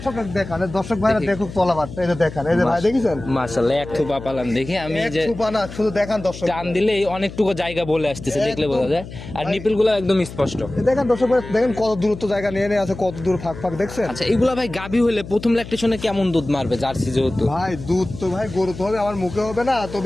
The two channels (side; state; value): left; noise; hum, 13 dB below the sound